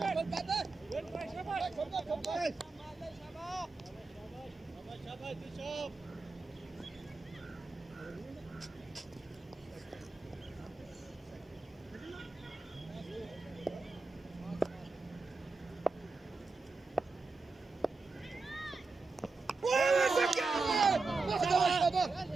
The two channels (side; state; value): left; quieter; 3.9 dB